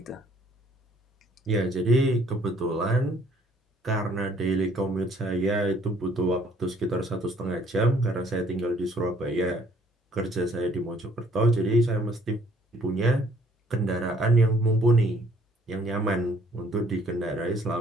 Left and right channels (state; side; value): normal; both; correlation 0.62